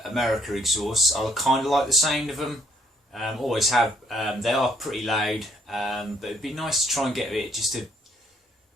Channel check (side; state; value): both; normal; correlation 0.65